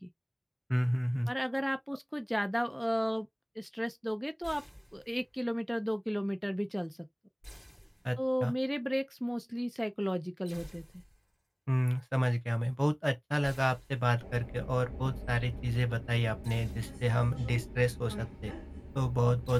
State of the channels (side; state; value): both; identical; correlation 1.00